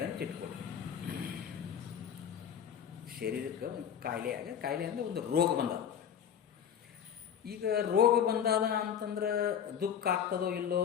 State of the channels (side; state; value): right; quieter; 8.6 dB